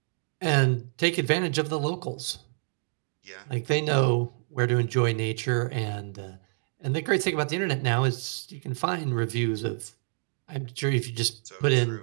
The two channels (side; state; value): left; silent; digital silence